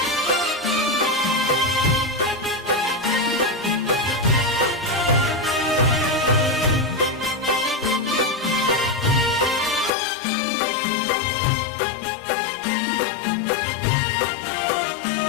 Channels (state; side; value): drops out; right; at 9.9 s